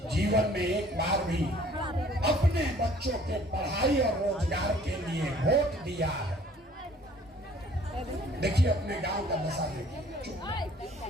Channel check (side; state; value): both; normal; correlation 0.55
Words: जीवन में एक बार भी अपने बच्चों के पढ़ाई और रोजगार के लिए वोट दिया है? देखिए अपने गांव का दशा देखिए,